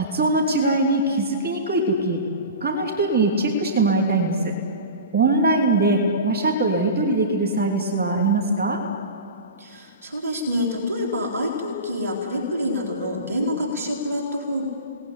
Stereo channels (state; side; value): inverted; both; correlation -0.31